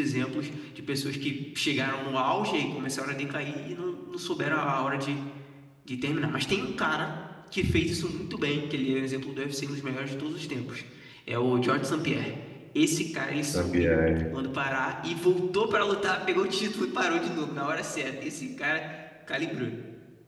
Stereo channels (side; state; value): both; identical; correlation 1.00